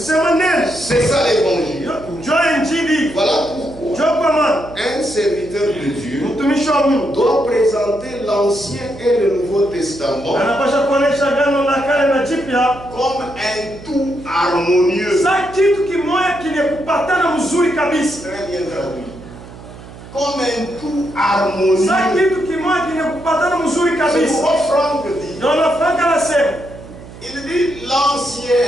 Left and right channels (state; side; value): noise; right; hum, 17 dB below the sound